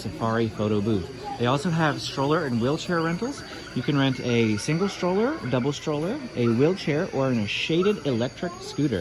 Photo booth. They also have stroller and wheelchair rentals. You can rent a single stroller, double stroller, a wheelchair, or a shaded electric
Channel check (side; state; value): both; identical; correlation 1.00